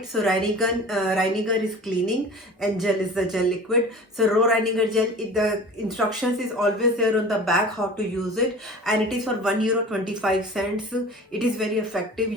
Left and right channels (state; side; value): normal; both; correlation 0.40